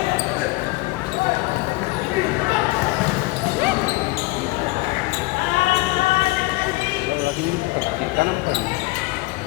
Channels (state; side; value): quieter; right; 21.8 dB